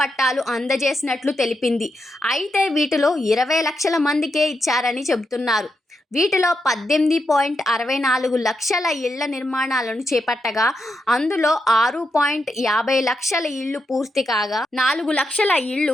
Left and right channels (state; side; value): normal; both; correlation 0.84